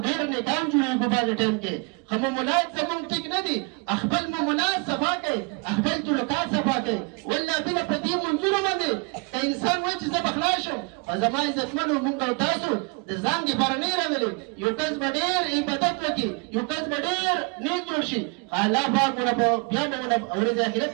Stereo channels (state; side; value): quieter; left; 32.1 dB